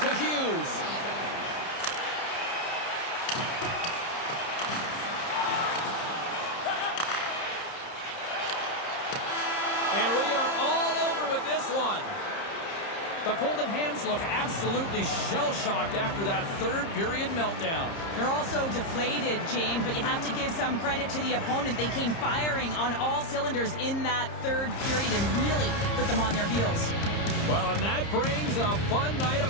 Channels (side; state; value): right; late; 30 ms